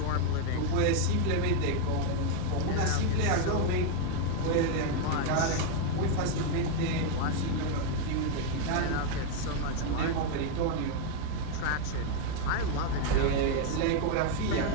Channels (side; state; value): both; different; correlation 0.01